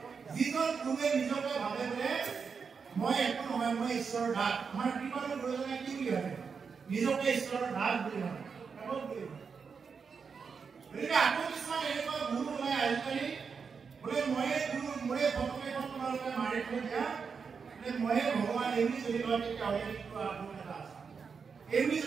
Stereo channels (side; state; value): left; quieter; 5.7 dB